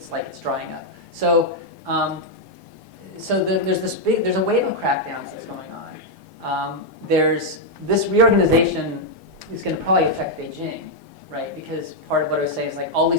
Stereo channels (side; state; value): both; normal; correlation -0.01